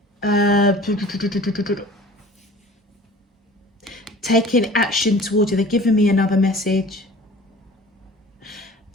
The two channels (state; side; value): normal; both; correlation 0.44